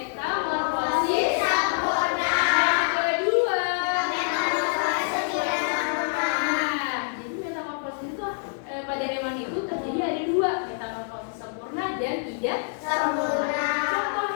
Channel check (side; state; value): right; silent; digital silence